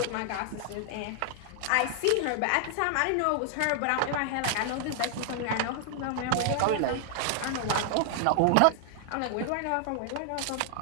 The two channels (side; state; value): both; different; correlation 0.00